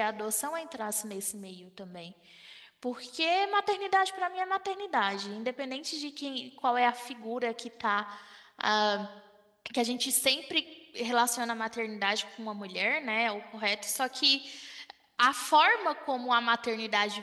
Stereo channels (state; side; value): identical; both; correlation 1.00